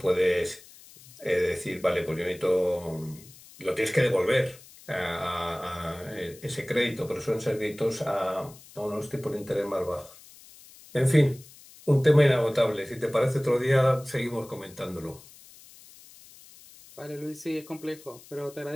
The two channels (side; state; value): left; noise; hiss, 22 dB below the sound